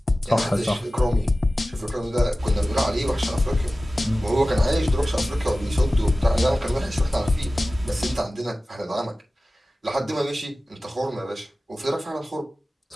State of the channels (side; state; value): both; normal; correlation 0.96